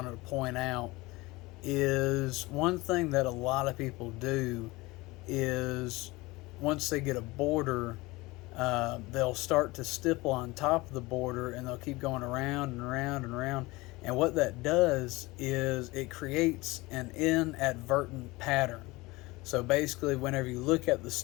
to point out, is one thing that a lot of people do is once they get a border, they'll start to stipple on top of the border, and they'll keep going around and around and around. And what that does is it creates an inadvertent pattern. So basically, whenever you look at the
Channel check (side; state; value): right; quieter; 21.8 dB